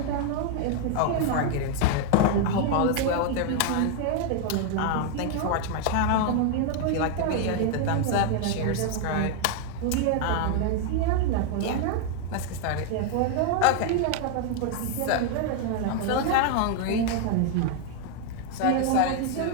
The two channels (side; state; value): both; different; correlation 0.00